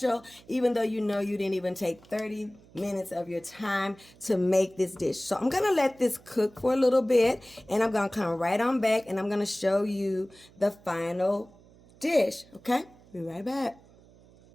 even though you didn't even take 30 minutes of your time to make this dish. So I'm going to let this cook for a little bit, and I'm going to come right on back, and I'm going to show you the final dish, okay? Be right back.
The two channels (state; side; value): noise; right; hum, 26 dB below the sound